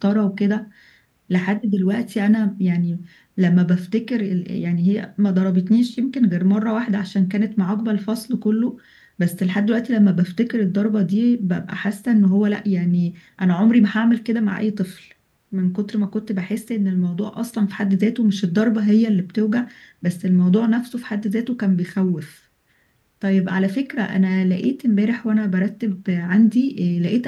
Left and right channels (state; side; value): identical; both; correlation 1.00